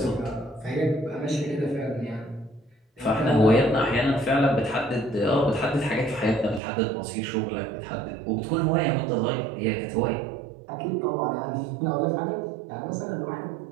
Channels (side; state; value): left; drops out; at 6.6 s